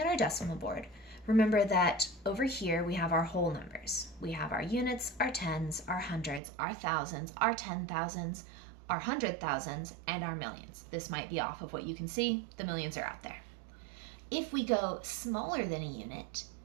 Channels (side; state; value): left; drops out; at 6.4 s